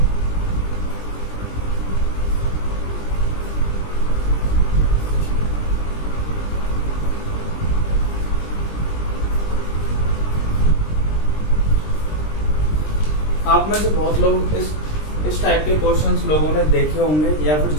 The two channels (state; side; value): late; right; 20 ms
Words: आप में से बहुत लोग इस टाइप के क्वेश्चंस लोगों ने देखे होंगे, या फिर